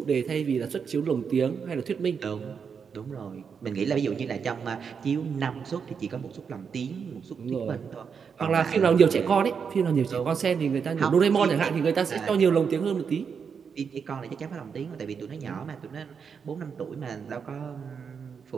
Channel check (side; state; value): left; quieter; 6.4 dB